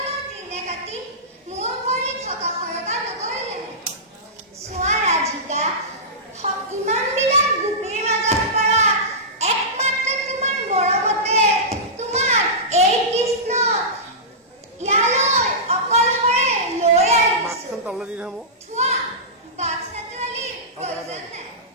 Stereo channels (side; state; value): both; normal; correlation -0.17